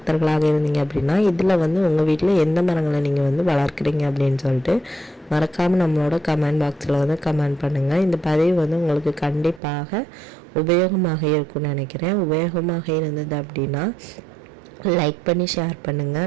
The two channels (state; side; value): drops out; left; at 9.6 s